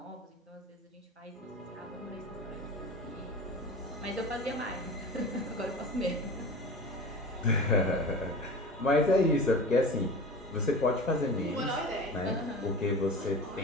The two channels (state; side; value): normal; both; correlation 0.34